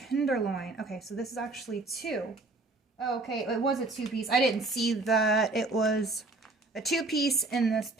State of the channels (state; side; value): quieter; left; 3.3 dB